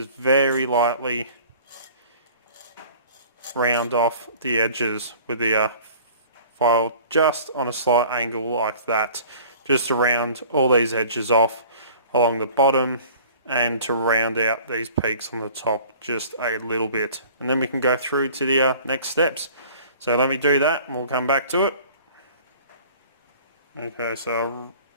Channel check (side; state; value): both; inverted; correlation -0.47